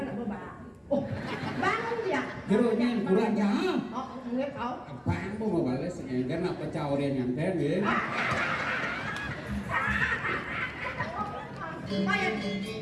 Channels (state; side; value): identical; both; correlation 1.00